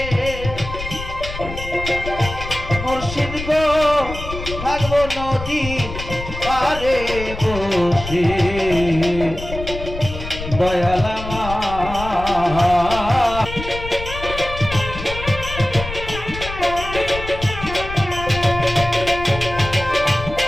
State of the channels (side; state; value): left; noise; rumble, 9 dB below the sound